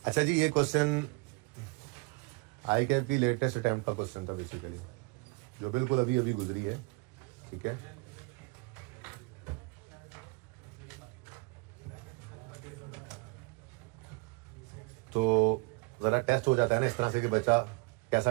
अच्छा जी, ये क्वेश्चन आई कैफ की लेटेस्ट अटेम्प्ट का क्वेश्चन था बेसिकली, जो बिल्कुल अभी अभी गुजरी है। ठीक है, तो ज़रा टेस्ट हो जाता है ना इस तरह से कि बच्चा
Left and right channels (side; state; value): left; quieter; 28.5 dB